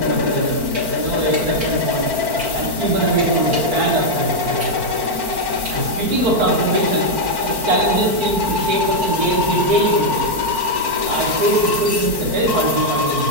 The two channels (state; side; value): late; left; 4.5 ms